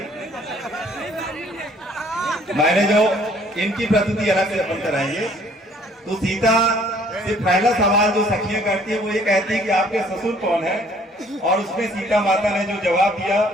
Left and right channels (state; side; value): normal; both; correlation 0.59